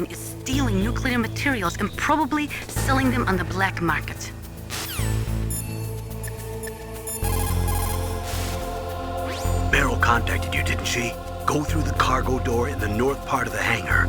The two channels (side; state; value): both; identical; correlation 1.00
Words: is stealing nuclear materials and probably selling them on the black market. Meryl contacted you, didn't she? Go through the cargo door in the north part of the